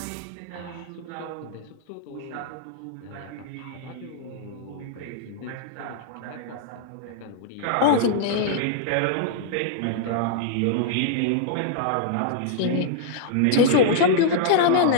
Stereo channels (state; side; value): different; both; correlation -0.01